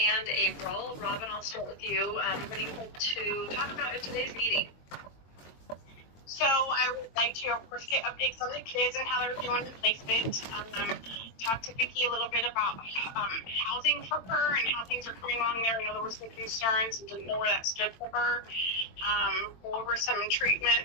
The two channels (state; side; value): late; right; 22 ms